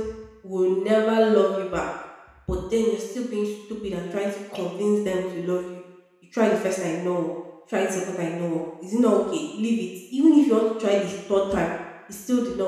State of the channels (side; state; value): both; identical; correlation 1.00